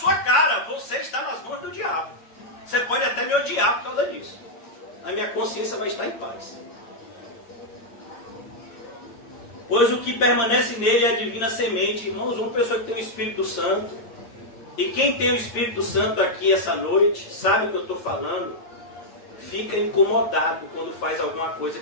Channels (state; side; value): late; right; 8.7 ms